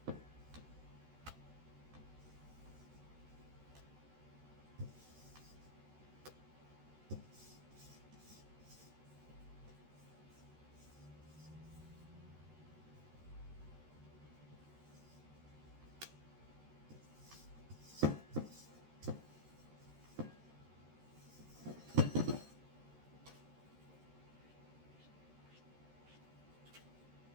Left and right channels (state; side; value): late; left; 13 ms